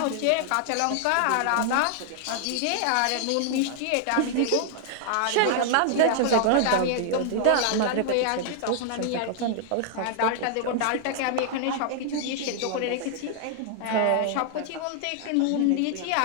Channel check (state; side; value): different; both; correlation 0.00